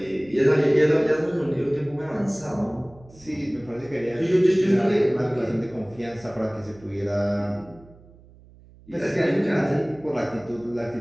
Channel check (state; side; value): noise; right; hum, 24 dB below the sound